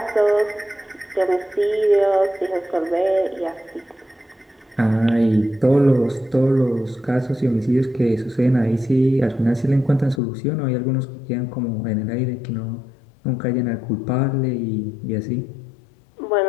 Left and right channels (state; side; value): drops out; right; at 10.2 s